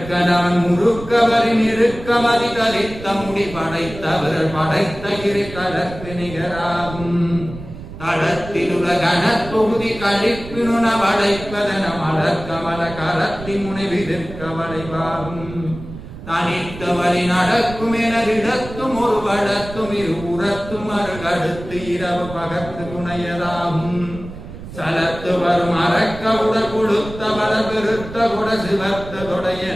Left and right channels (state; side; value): noise; right; rumble, 13 dB below the sound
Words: முறுக்கவரின் இருக்கமதி தரித்த முடி படைத்தவர்கள் படைத்த இரு கலக்கு நிகராகும். தடத்திலுலகன தொகுதி கழிப்பினுண வளைப்பதன மலர்கமல கரத்தி முனைவிதிர்க்க வளைவாகும். தனித்தவரி நடக்கும் எனரிடத்தும் ஒரு வளத்தும் இரு உரத்தும் அருகடுத்து இரவு பகத்து துணையதாகும். சலத்து வரும் அறக்க உடல் கொடுத்த வள பெருத்த குட சிவத்த தொடைய